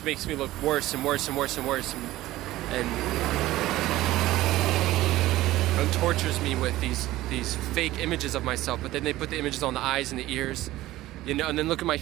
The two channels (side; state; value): left; quieter; 16.3 dB